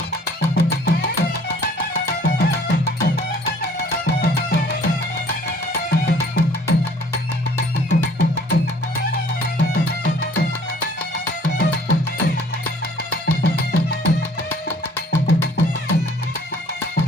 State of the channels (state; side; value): normal; both; correlation 0.55